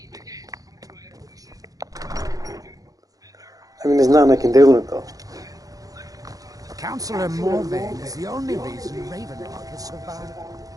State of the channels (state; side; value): late; left; 0.17 ms